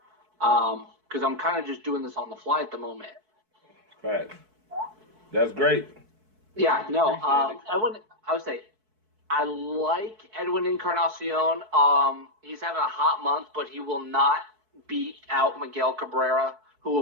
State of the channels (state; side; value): late; left; 4.6 ms